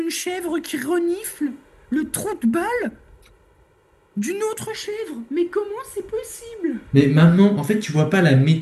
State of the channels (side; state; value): both; identical; correlation 1.00